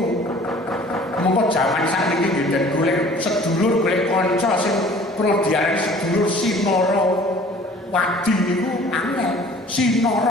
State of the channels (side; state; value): both; normal; correlation 0.50